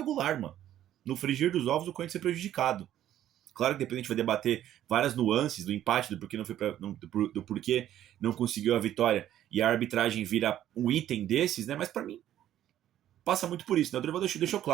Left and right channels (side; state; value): left; quieter; 11.9 dB